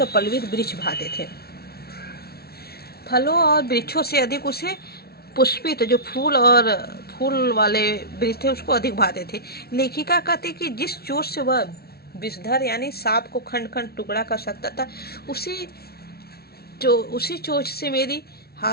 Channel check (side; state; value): right; late; 0.45 ms